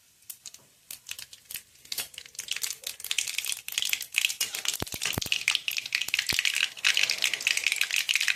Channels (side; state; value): both; identical; correlation 1.00